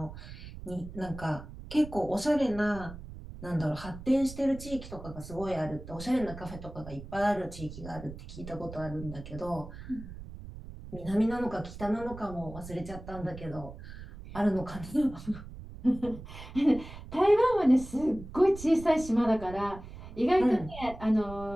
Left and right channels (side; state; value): right; noise; rumble, 13 dB below the sound